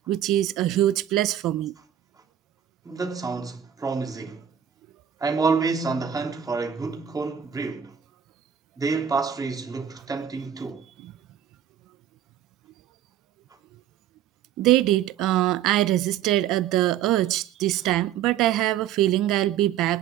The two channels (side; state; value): left; quieter; 10.0 dB